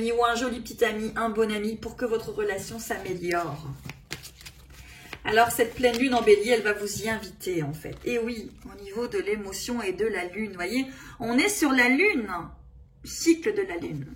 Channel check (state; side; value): identical; both; correlation 1.00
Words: ou un joli petit ami, un bon ami pour que votre relation s'améliore. Alors cette pleine lune en bélier, elle va vous y inviter en fait. Et oui, au niveau de l'émotion et de la lune, vous voyez, on est sur la lune, cycle de la lune,